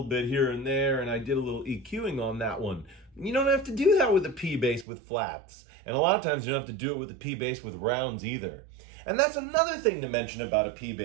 bit here and there, and I did a little EQing on that one. You don't have to do that with a P bass with flats, and a lot of times you don't have to do it with a P bass with rounds either. And that's another thing to mention about a P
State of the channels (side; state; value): left; drops out; at 4.9 s